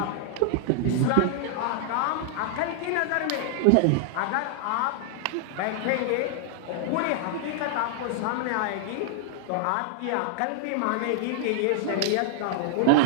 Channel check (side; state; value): both; different; correlation -0.01